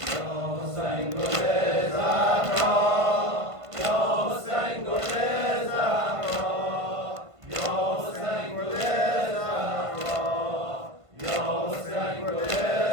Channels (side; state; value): left; late; 1.5 ms